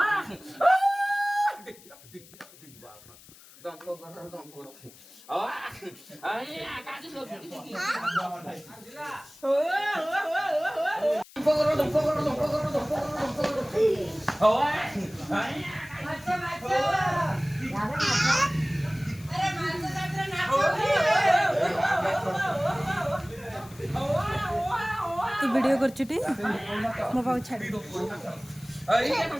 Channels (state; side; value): noise; left; hiss, 22 dB below the sound